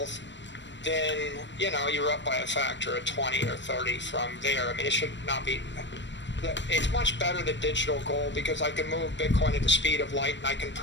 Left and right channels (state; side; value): late; right; 0.53 ms